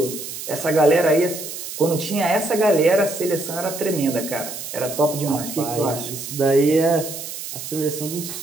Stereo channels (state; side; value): noise; right; hiss, 9 dB below the sound